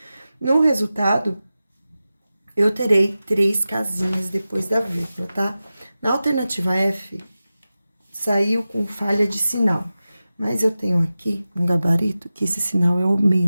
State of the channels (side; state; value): both; inverted; correlation -0.94